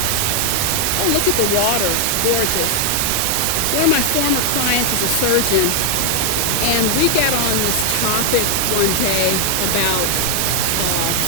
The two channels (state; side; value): different; both; correlation 0.00